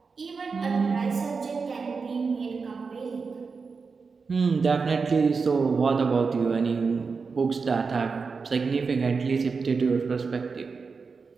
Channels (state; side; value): quieter; left; 4.9 dB